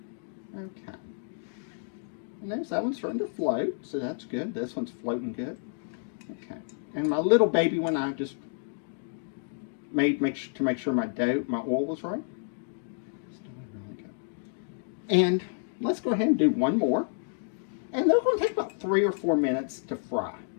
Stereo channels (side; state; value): right; silent; digital silence